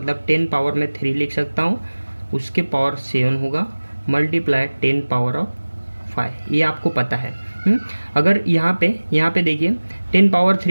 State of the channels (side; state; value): both; inverted; correlation -1.00